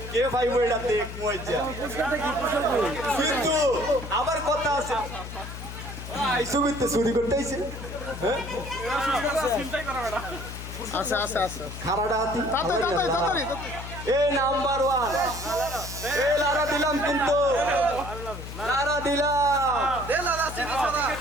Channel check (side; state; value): left; noise; hum, 10 dB below the sound